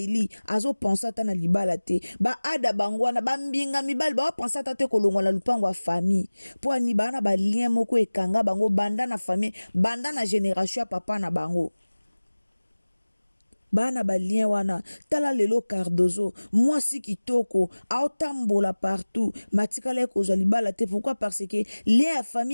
azo pensa ta na libala te ba ada bangwana bambinga mibali ba pensa ta te kolongwa na lupango wa famille po ani bana ba lien moko ekanga bango banda na famille banda na génération ya papa na bango bana balien wana tala lelo Cardozo mwasi kitoko aotambola partout matikala ya kozwa libala te pourquoi parce que lien ya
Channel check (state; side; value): inverted; both; correlation -1.00